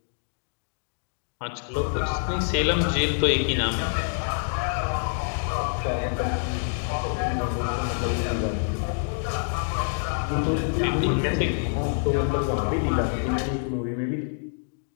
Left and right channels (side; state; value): right; silent; digital silence